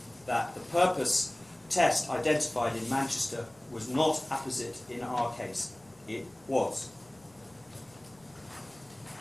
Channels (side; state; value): left; noise; rumble, 30 dB below the sound